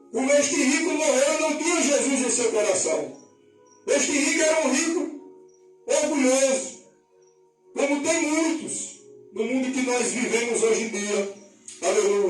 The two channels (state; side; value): identical; both; correlation 1.00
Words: Como este rico morreu, não tinha Jesus em seu coração. Este rico era um rico orgulhoso, como tem muitos no mundo que nós vivemos hoje em dia.